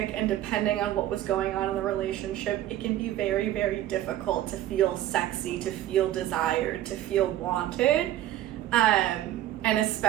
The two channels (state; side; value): quieter; left; 13.3 dB